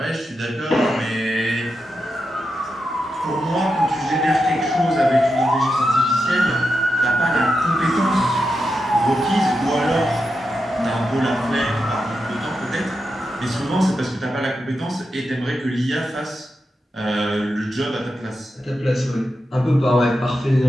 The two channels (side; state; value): both; normal; correlation 0.88